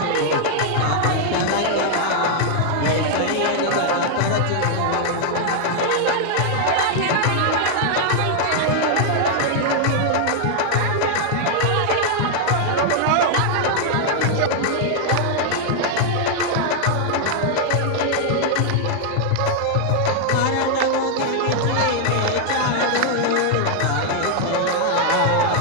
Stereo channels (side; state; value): both; different; correlation 0.00